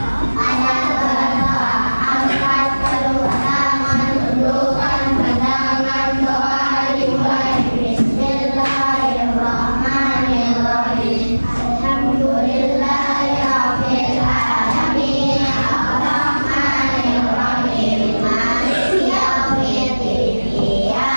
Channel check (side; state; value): both; inverted; correlation -1.00